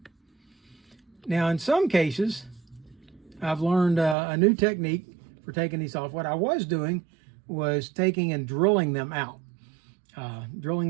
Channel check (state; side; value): drops out; left; at 4.2 s